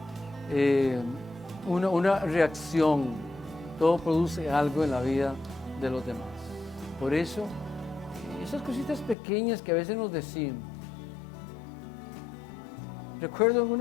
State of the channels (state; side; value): drops out; right; at 9.2 s